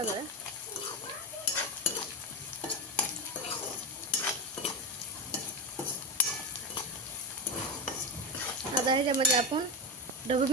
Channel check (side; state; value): both; normal; correlation 0.15